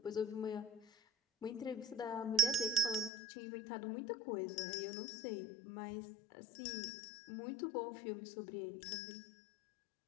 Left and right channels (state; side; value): drops out; right; at 3.1 s